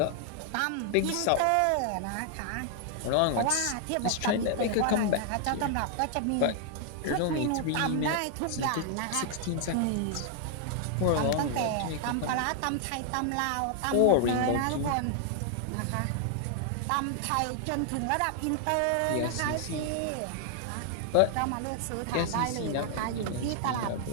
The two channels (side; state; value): both; different; correlation 0.00